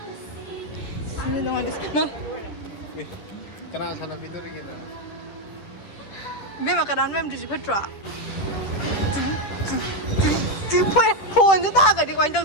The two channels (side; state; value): right; late; 10 ms